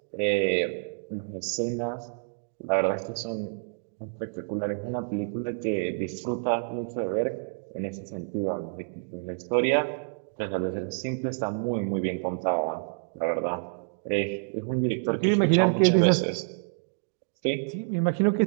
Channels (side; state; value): left; silent; digital silence